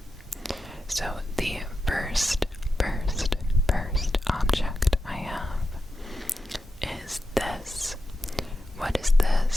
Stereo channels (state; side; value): normal; both; correlation 0.89